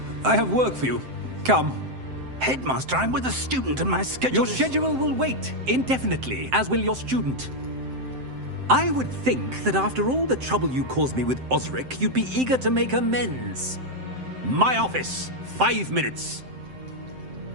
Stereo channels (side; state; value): left; late; 7.7 ms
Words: I have work for you. Come. Headmaster, I'm with a student and my schedule Your schedule will wait indefinitely, as will your student. I would think that after all the trouble you caused me with Osric, you'd be eager to make amends. My office, 5 minutes.